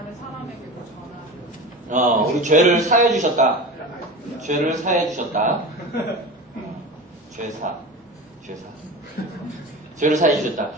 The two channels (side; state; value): both; normal; correlation 0.31